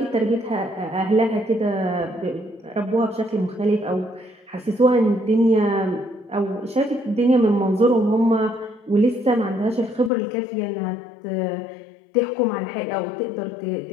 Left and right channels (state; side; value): drops out; right; at 10.1 s